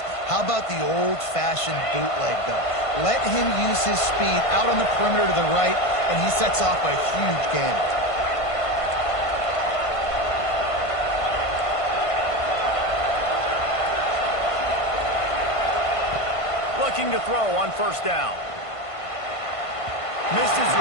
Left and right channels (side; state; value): right; late; 1.5 ms